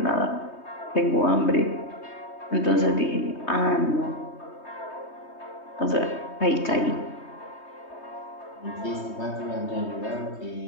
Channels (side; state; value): right; late; 3.2 ms